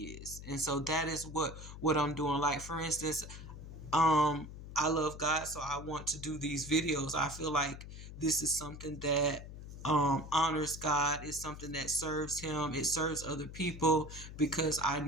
And so that is what I'm doing. Like, for instance, I love God, so I want to do these videos. I feel like this is something that honors God. It's something that serves him. It serves other people, because I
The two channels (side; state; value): left; noise; hum, 12 dB below the sound